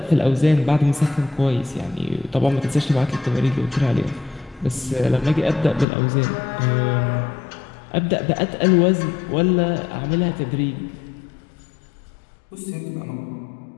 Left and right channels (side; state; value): right; drops out; at 5.9 s